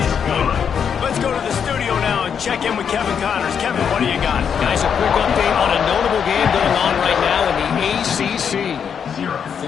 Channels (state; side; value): quieter; right; 7.4 dB